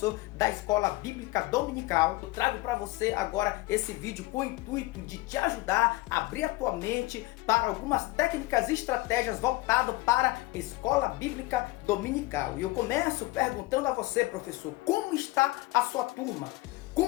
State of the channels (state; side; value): quieter; right; 19.9 dB